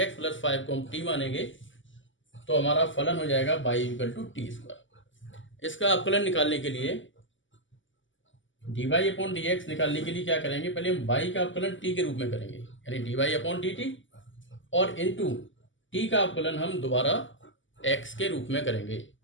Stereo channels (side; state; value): right; late; 0.55 ms